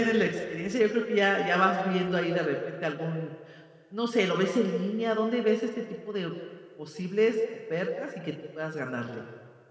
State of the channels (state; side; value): identical; both; correlation 1.00